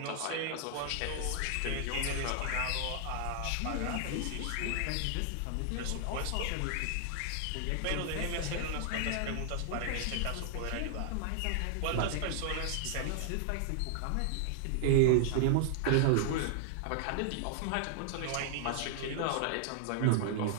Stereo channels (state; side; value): different; both; correlation -0.01